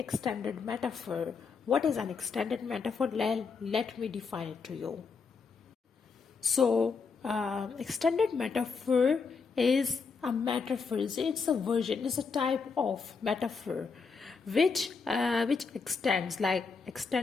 metaphor. What is an extended metaphor? Let me define it to you. So extended metaphor is a metaphor. It's a version. It's a type of metaphor which extends, like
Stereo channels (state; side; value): quieter; right; 5.1 dB